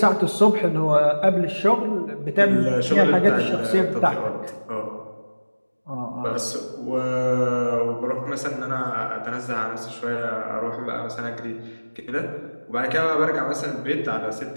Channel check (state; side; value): inverted; both; correlation -1.00